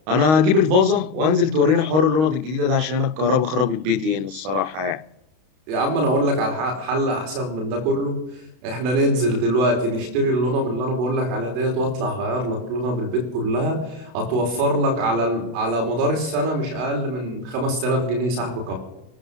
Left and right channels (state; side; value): late; left; 32 ms